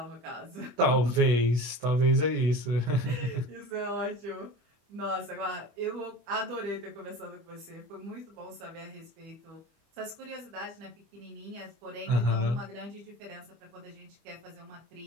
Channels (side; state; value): left; late; 25 ms